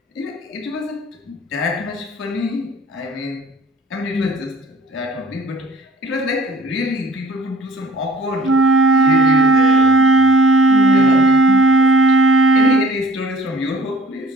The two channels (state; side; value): normal; both; correlation 0.51